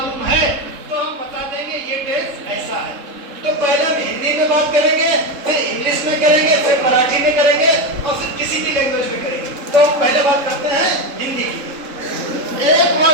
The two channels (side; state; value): left; late; 3.7 ms